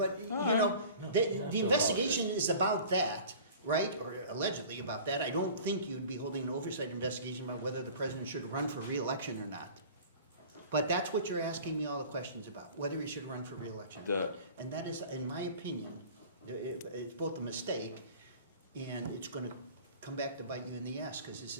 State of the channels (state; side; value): inverted; both; correlation -0.43